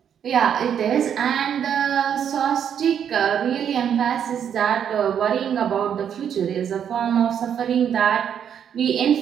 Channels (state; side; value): quieter; left; 8.6 dB